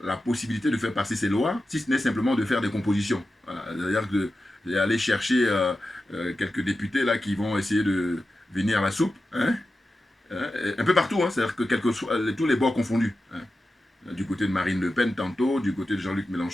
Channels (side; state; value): both; normal; correlation 0.92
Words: la possibilité de faire passer ses lois, si ce n'est simplement de faire des compositions. Voilà. C'est-à-dire d'aller chercher quelques députés là qui vont essayer de venir à la soupe, hein? Un peu partout, hein, c'est-à-dire que tous les bords confondus. Hein. Du côté de Marine Le Pen tantôt, du côté de Jean-Luc